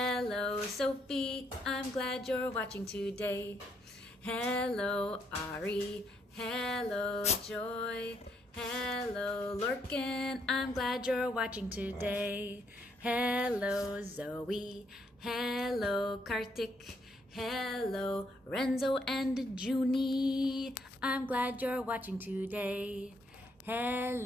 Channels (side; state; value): both; normal; correlation 0.73